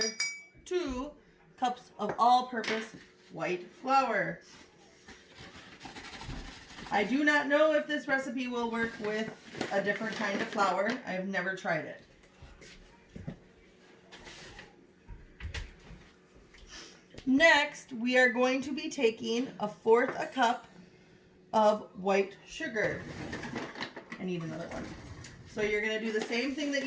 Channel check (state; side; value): identical; both; correlation 1.00